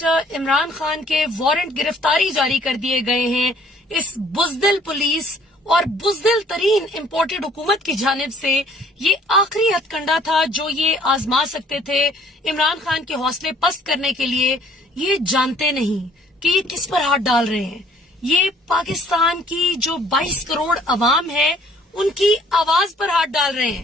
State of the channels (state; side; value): normal; both; correlation 0.59